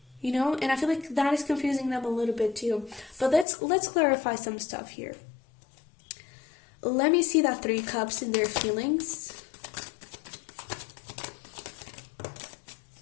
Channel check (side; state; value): right; drops out; at 3.5 s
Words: You know, and I feel like that is confusing them a little bit too. But let's clarify some stuff here. Let me see that Three Cups in their feelings.